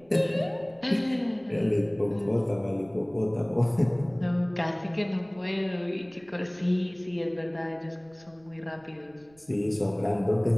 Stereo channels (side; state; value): right; noise; rumble, 30 dB below the sound